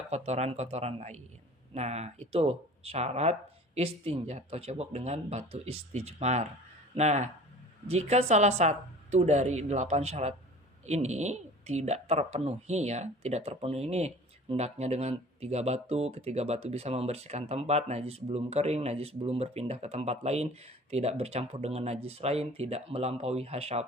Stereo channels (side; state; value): both; normal; correlation 0.44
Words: kotoran-kotoran lain. Nah, itu syarat istinja atau cebok dengan batu istijmar. Nah, jika salah satu dari 8 syarat ini tidak terpenuhi ya, tidak terpenuhi ini, hendaknya dengan 3 batu, ketiga batu bisa membersihkan tempat, najis belum kering, najis belum berpindah ke tempat lain, tidak bercampur dengan najis lain, tidak melampaui